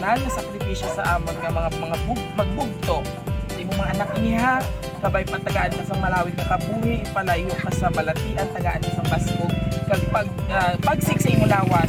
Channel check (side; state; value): both; identical; correlation 1.00